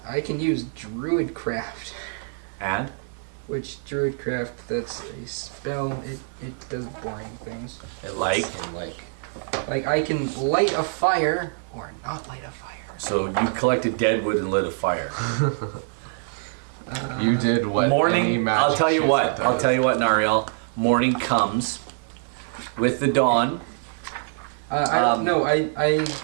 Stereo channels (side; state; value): left; silent; digital silence